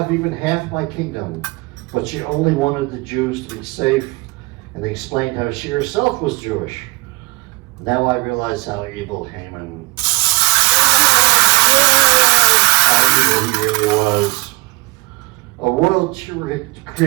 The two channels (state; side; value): quieter; left; 25.3 dB